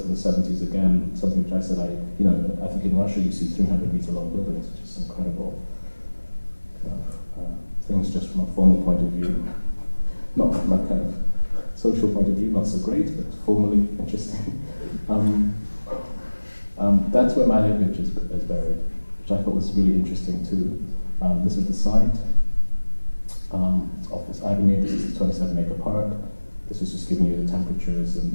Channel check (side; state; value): both; inverted; correlation -1.00